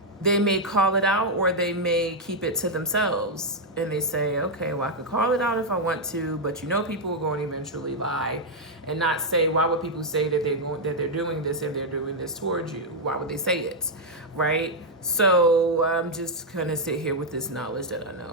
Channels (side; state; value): both; normal; correlation -0.01